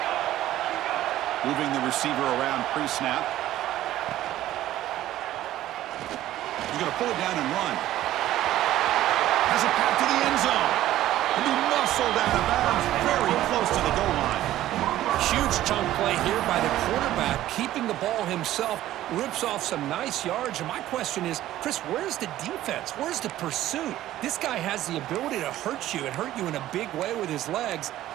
Moving the receiver around pre-snap. He's going to pull it down and run. Has it back to the end zone. And he muscled out of bounds very close to the goal line. Huge chunk play here by the quarterback, keeping the ball himself, rips off some nice yards. And my question is, Chris, where's the defense? Where's the pursuit? This guy has the ability to hurt you and hurt you in a big way with his legs.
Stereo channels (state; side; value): quieter; left; 13.9 dB